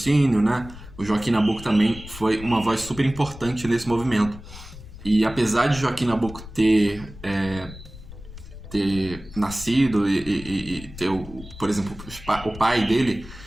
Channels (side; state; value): left; noise; rumble, 15 dB below the sound